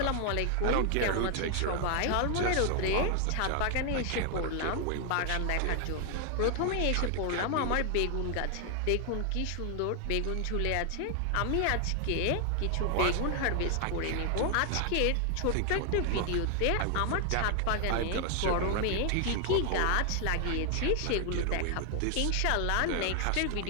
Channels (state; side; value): different; both; correlation 0.00